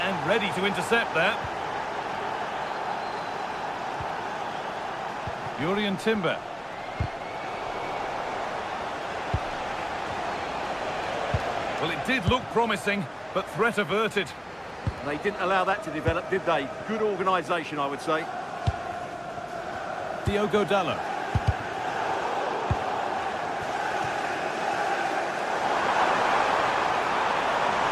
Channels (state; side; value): identical; both; correlation 1.00